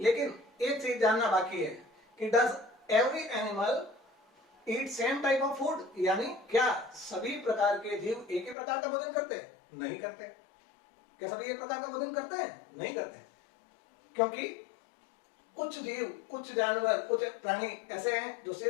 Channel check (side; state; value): right; drops out; at 8.6 s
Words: एक चीज जानना बाकी है कि does every animal eat same type of food, यानी क्या सभी प्रकार के जीव एक ही प्रकार का भोजन करते हैं? नहीं करते। क्या सभी एक प्रकार का भोजन करते हैं? नहीं करते, क्योंकि कुछ जीव, कुछ जानवर, कुछ प्राणी ऐसे हैं जो